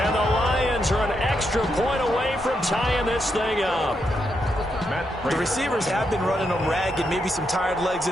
the Lions are an extra point away from tying this thing up. The receivers have been running them ragged. Maybe some tired legs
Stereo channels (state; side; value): normal; both; correlation 0.81